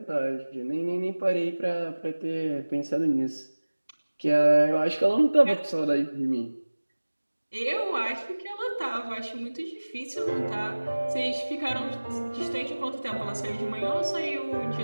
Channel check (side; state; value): both; inverted; correlation -1.00